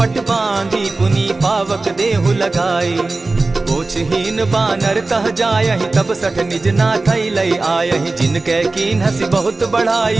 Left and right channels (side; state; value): left; quieter; 3.4 dB